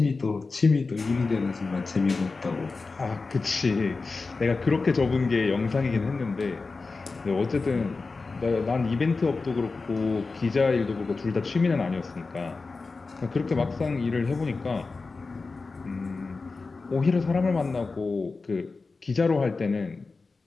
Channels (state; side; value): quieter; right; 4.0 dB